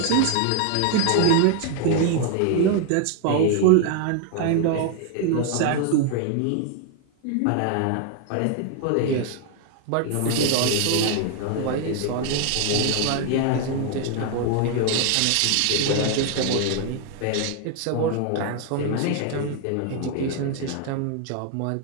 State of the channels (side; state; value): both; different; correlation 0.00